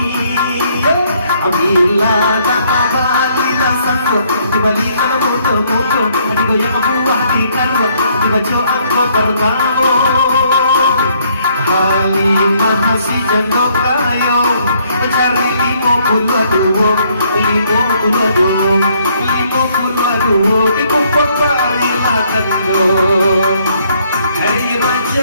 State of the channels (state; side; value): inverted; both; correlation -0.67